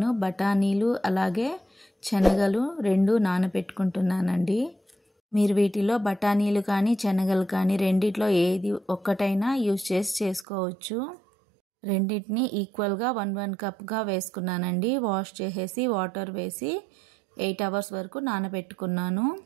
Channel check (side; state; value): left; drops out; at 10.5 s